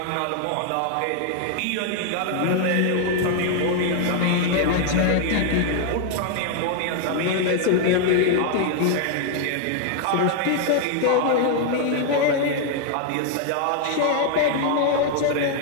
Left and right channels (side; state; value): both; different; correlation 0.00